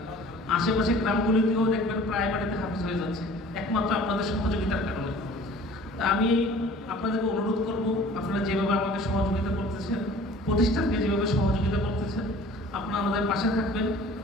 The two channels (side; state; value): both; normal; correlation 0.47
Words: আশেপাশে গ্রামগুলিতেও দেখবেন প্রায় বাড়িতে হাফেজ হয়ে যাচ্ছে, একমাত্র আপনাদের সহযোগিতার কারণে। তা আমি আপনাদেরকে অনুরোধ করব, আপনারা যেভাবে আমাকে সহযোগিতা করতেছেন, প্রতিষ্ঠানকে যেভাবে সহযোগিতা করতেছেন, আপনারা আমাদের পাশে থাকবেন।